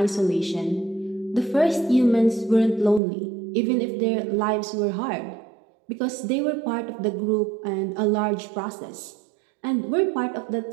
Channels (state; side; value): drops out; left; at 3.0 s